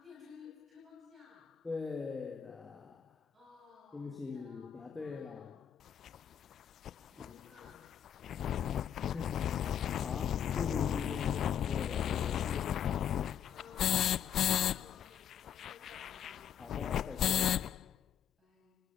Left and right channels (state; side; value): quieter; right; 9.1 dB